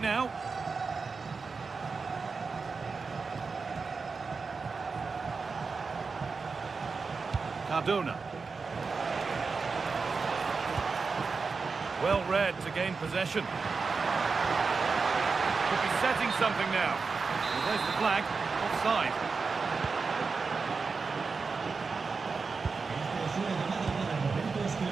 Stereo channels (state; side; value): quieter; left; 4.7 dB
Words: Cardona. Well read to gain possession. Could be setting something now. Well, there's the flag. Offside.